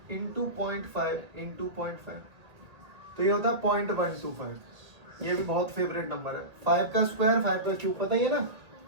इंटू 0.5 इंटू 0.5, तो ये होता है 0.125। ये भी बहुत फेवरेट नंबर है, 5 का स्क्वायर 5 का क्यूब, पता ही है ना।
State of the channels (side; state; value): left; late; 1.8 ms